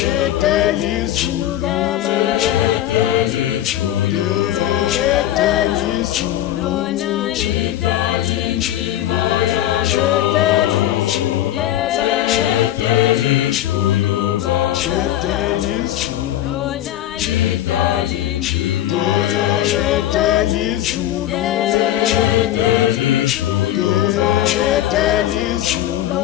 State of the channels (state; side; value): quieter; right; 12.9 dB